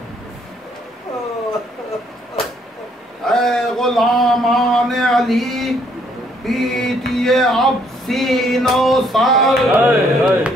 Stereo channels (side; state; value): both; normal; correlation 0.67